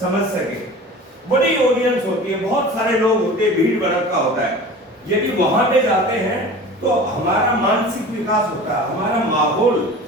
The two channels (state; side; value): normal; both; correlation 0.38